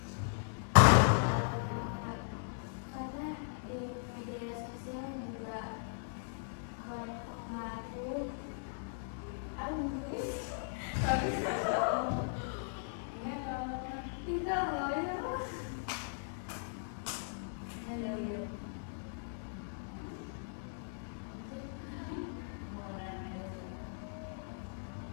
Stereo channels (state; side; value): silent; right; digital silence